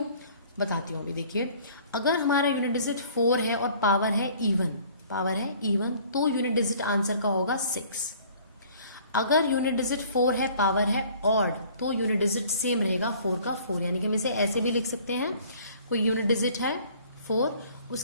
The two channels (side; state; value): both; inverted; correlation -0.53